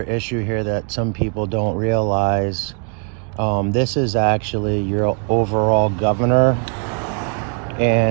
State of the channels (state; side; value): quieter; left; 37.7 dB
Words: issue here that some people don't realize. This is actually your overall governor,